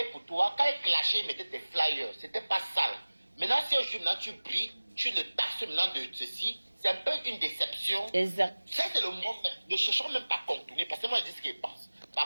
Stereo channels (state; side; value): inverted; both; correlation -1.00